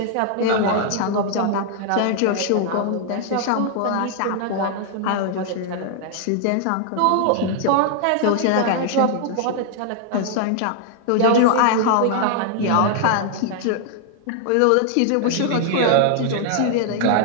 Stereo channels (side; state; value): both; different; correlation 0.00